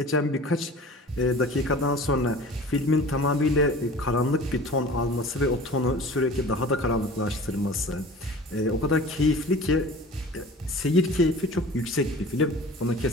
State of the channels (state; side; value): normal; both; correlation 0.42